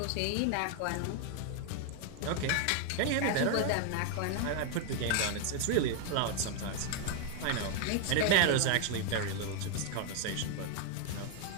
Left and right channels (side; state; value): both; different; correlation 0.00